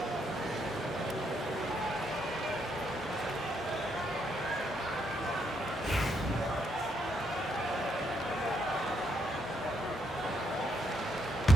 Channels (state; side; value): normal; both; correlation 0.75